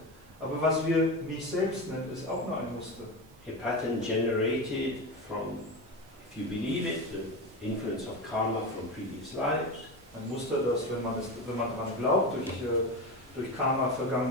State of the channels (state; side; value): noise; right; hiss, 28 dB below the sound